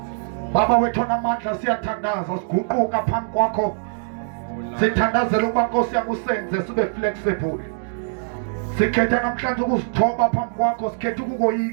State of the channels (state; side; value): silent; left; digital silence